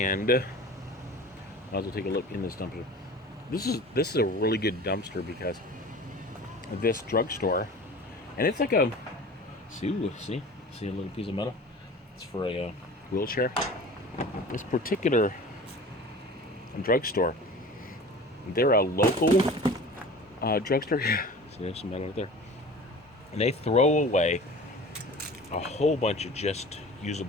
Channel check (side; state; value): both; normal; correlation 0.39